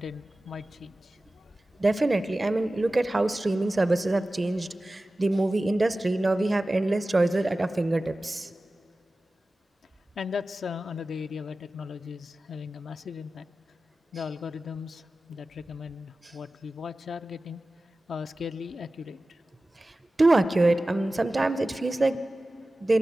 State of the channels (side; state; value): both; normal; correlation 0.96